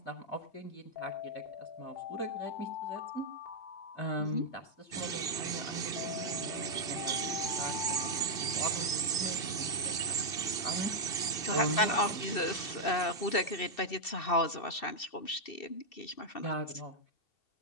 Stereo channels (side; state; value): right; late; 2.7 ms